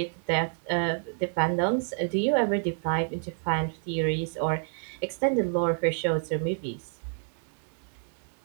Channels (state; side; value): silent; left; 56 dB below the other